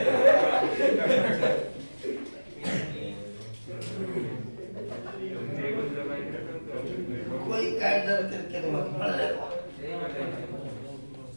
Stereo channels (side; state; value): both; inverted; correlation -1.00